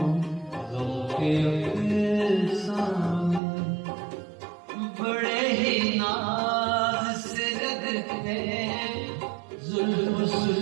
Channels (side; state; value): left; drops out; at 3.4 s